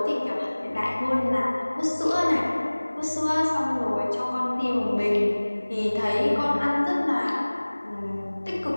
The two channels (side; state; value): both; inverted; correlation -1.00